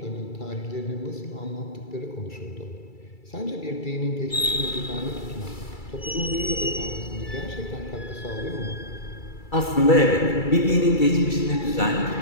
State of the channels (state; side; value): late; right; 2.3 ms